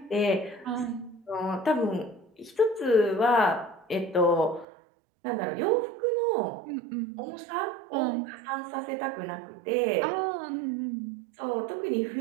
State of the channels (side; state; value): left; drops out; at 4.7 s